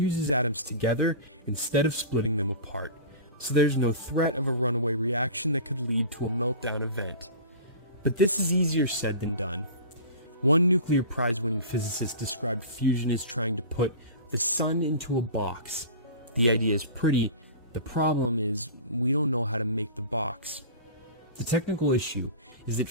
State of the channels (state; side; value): inverted; both; correlation -0.35